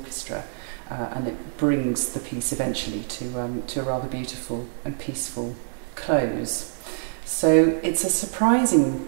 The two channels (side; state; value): left; silent; 62 dB below the other